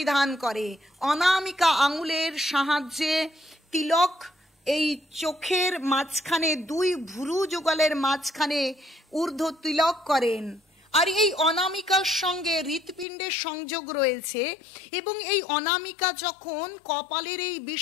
করে। অনামিকা আঙুলের সাহায্যে তিলক এই চোখের মাঝখানে, দুই ভুরু যুগলের মাঝখানে ঊর্ধ্ব তিলক করেন। আর এই অনামিকার সঙ্গে হৃৎপিণ্ডের সংযোগ রয়েছে, এবং এই অনামিকা যখন কপালের এই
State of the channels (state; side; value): drops out; right; at 13.1 s